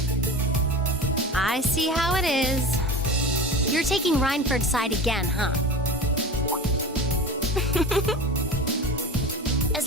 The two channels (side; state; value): both; normal; correlation 0.32